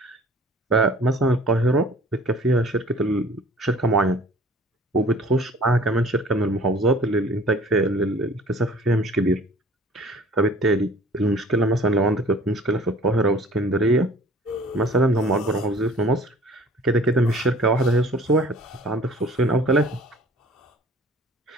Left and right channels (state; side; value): normal; both; correlation 0.49